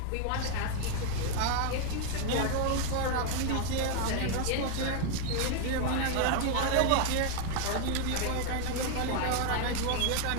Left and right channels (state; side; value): different; both; correlation 0.00